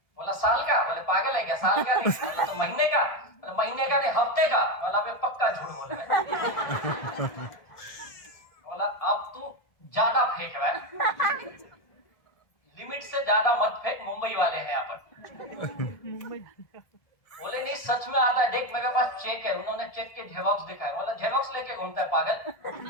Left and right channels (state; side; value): late; right; 1.7 ms